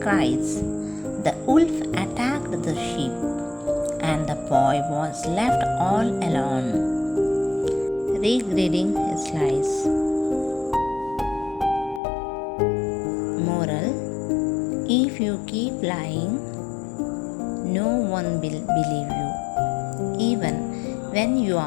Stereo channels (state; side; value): drops out; right; at 12.0 s